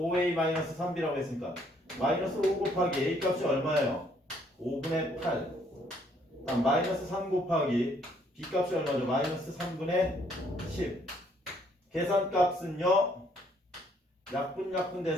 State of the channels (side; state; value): both; normal; correlation 0.66